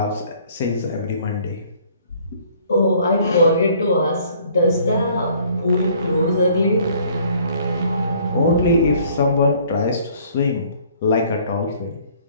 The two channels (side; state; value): both; inverted; correlation -0.58